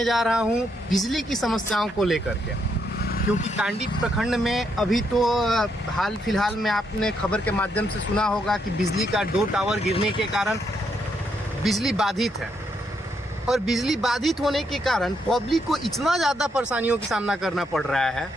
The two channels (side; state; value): both; normal; correlation 0.77